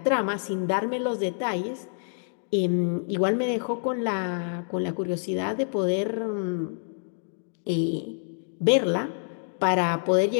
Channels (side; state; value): right; silent; digital silence